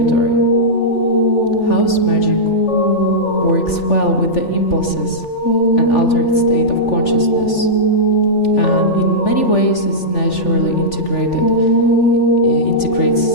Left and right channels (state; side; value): late; right; 3.4 ms